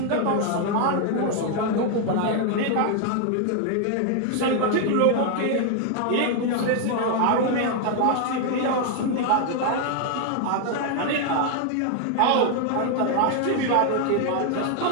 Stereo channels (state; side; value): different; both; correlation 0.00